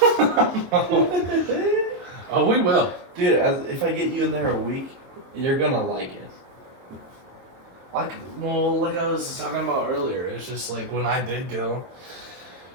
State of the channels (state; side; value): late; left; 22 ms